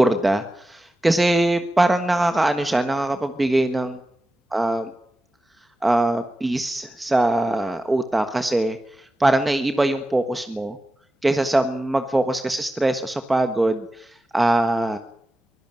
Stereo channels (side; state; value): both; normal; correlation 0.93